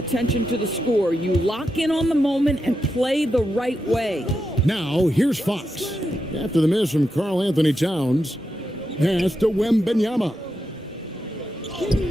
to the score. You lock in on the moment and play the right way. Now, here's Fox. After the miss from Karl Anthony Towns, pass to Wembanyama.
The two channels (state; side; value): normal; both; correlation 0.86